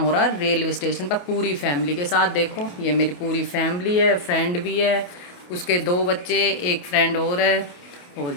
रहा है रेलवे स्टेशन पर पूरी फैमिली के साथ। देखो ये मेरी पूरी फैमिली है, फ्रेंड भी है, उसके 2 बच्चे, एक फ्रेंड और है, और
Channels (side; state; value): right; late; 28 ms